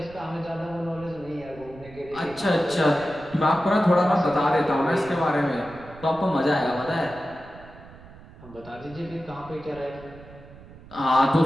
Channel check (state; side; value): noise; right; rumble, 19 dB below the sound